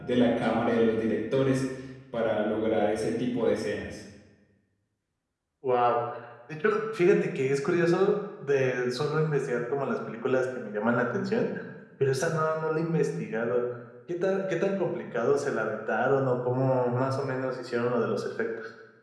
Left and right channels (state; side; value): identical; both; correlation 1.00